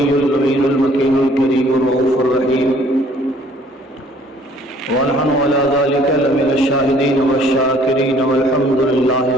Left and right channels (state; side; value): normal; both; correlation 0.58